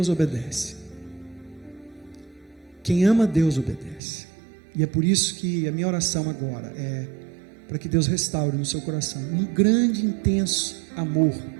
obedece. Quem ama Deus obedece. E é por isso que a minha oração agora é para que Deus restaure no seu coração um grande, intenso amor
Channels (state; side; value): drops out; left; at 4.0 s